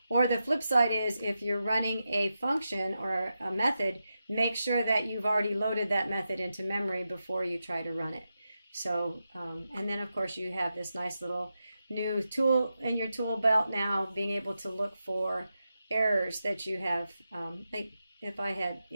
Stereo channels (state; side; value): inverted; both; correlation -0.88